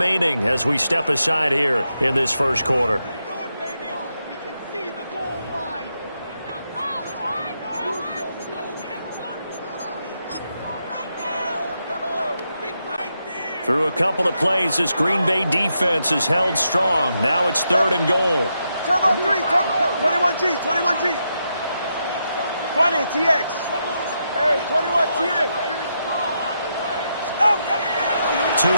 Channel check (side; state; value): both; inverted; correlation -0.82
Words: as we step aside here in this first quarter. Through a couple of plays, this Green Bay defense is held strong. Now it's 3rd and goal. Turbo 3, 21G, 21G. 20, TX. Hey, 21, TX.